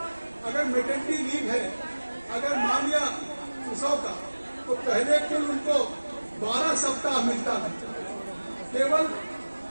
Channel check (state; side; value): inverted; both; correlation -1.00